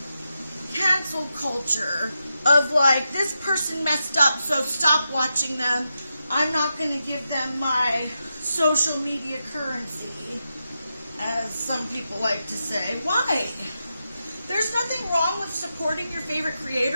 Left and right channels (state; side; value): inverted; both; correlation -0.87